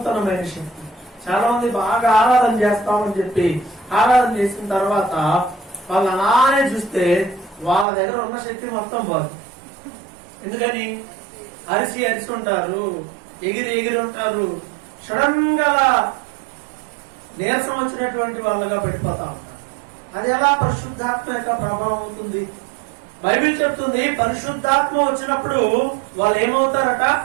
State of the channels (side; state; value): left; drops out; at 7.9 s